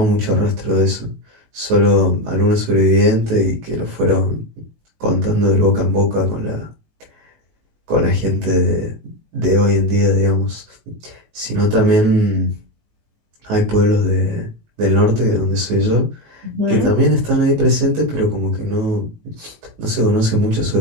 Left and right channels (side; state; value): left; late; 19 ms